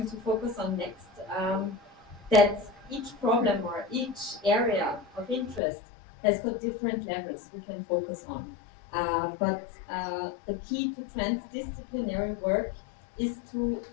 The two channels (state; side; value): drops out; right; at 5.6 s